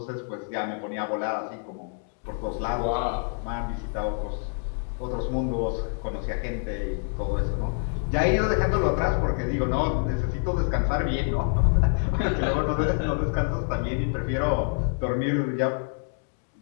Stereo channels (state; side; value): silent; right; 60 dB below the other